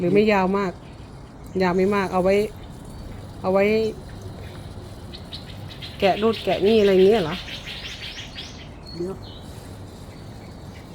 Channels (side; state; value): both; identical; correlation 1.00